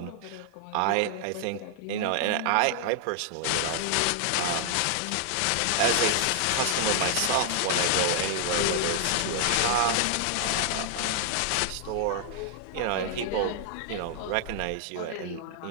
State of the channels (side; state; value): both; different; correlation 0.00